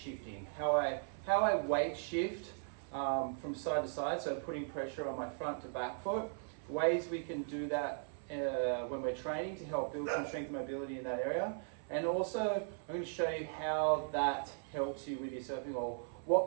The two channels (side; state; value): left; silent; 52 dB below the other